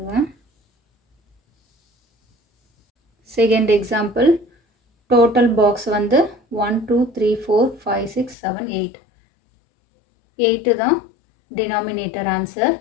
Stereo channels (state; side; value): drops out; right; at 8.3 s